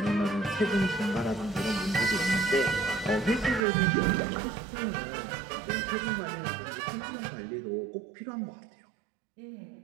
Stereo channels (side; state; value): left; drops out; at 3.6 s